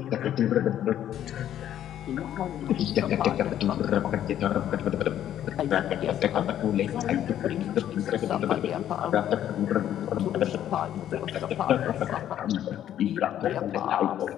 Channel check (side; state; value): right; quieter; 11.1 dB